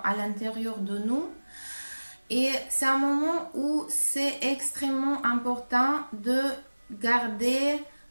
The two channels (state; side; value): inverted; both; correlation -1.00